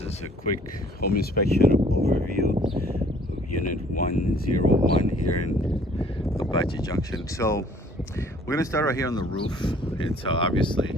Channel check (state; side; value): normal; both; correlation 0.57